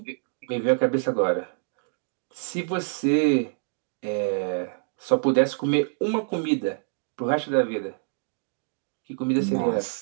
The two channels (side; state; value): left; silent; 61 dB below the other